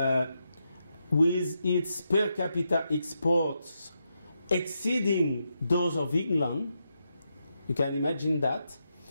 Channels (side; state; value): both; inverted; correlation -0.84